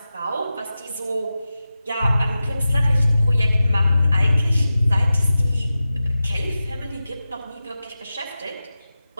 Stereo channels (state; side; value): inverted; both; correlation -0.94